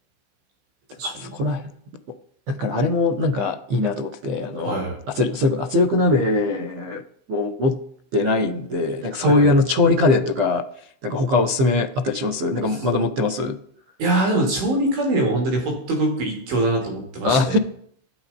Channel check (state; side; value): late; left; 15 ms